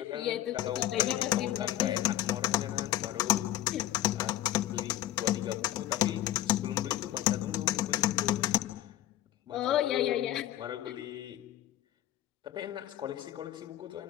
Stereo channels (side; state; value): right; quieter; 13.5 dB